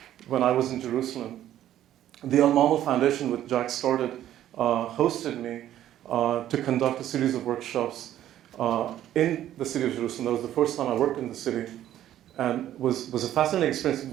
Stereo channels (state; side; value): quieter; left; 12.2 dB